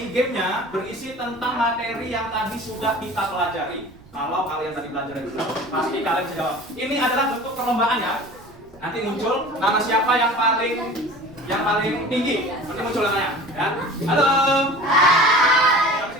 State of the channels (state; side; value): noise; right; rumble, 25 dB below the sound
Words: gamenya berisi tentang materi yang tadi sudah kita pelajari. Kalau kalian tadi belajar itu, pasti kalian bisa jawab. Ini adalah bentuk perlombaan ya. Nanti muncul nama siapa yang paling tinggi. Nanti muncul namanya, ya. Halo. Hai.